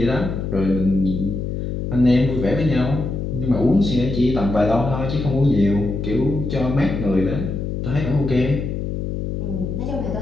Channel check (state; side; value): noise; left; hum, 3 dB below the sound